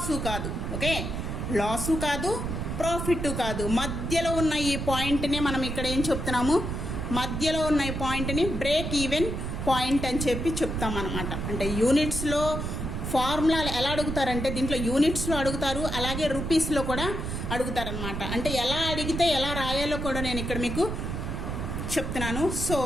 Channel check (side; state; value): right; noise; rumble, 4 dB below the sound